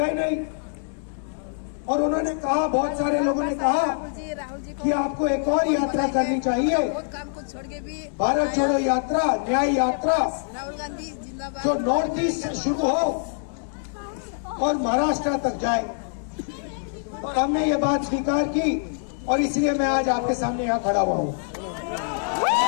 नहीं। और उन्होंने कहा, बहुत सारे लोगों ने कहा कि आपको एक और यात्रा करनी चाहिए, भारत जोड़ो यात्रा, न्याय यात्रा, जो नॉर्थ ईस्ट से शुरू हो और महाराष्ट्र तक जाए। और हमने ये बात स्वीकार की और इसलिए मैं आज आपके सामने यहाँ खड़ा हुआ हूँ।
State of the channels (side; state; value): right; silent; 60 dB below the other